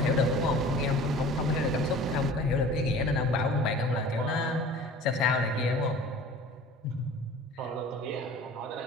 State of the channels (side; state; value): both; normal; correlation 0.43